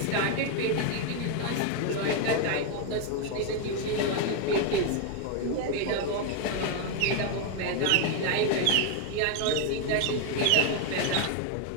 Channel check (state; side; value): different; both; correlation 0.01